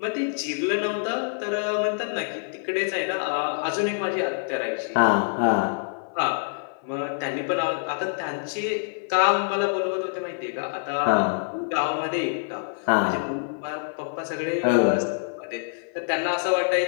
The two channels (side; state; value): right; silent; 57 dB below the other